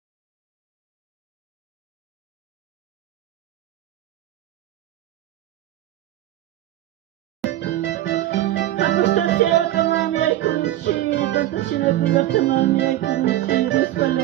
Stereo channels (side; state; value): left; quieter; 14.0 dB